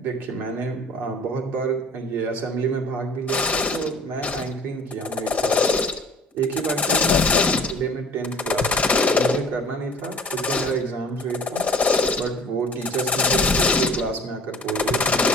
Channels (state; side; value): normal; both; correlation 0.47